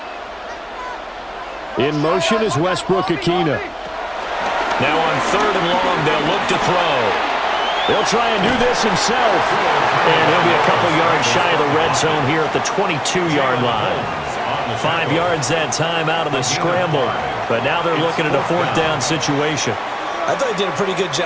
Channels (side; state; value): both; identical; correlation 1.00